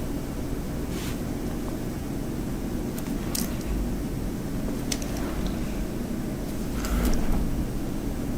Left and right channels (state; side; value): identical; both; correlation 1.00